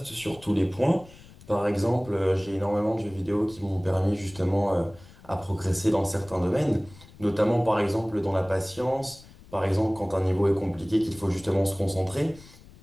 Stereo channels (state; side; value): noise; left; rumble, 22 dB below the sound